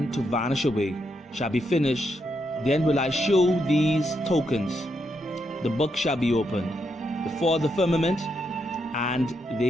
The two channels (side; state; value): both; normal; correlation 0.80